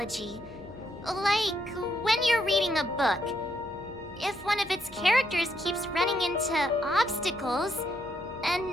Like when you're reading a book. If one of its characters keeps running into obstacles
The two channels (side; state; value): left; noise; hum, 23 dB below the sound